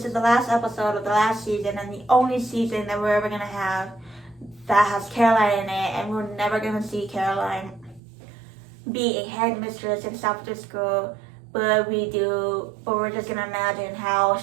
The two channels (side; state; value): left; drops out; at 8.0 s